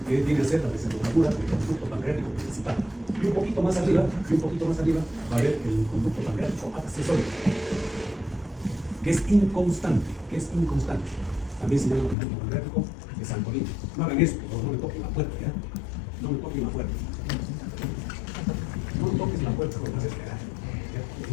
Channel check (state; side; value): drops out; right; at 12.2 s